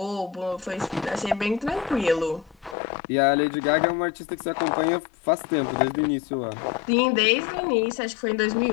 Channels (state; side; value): drops out; right; at 2.8 s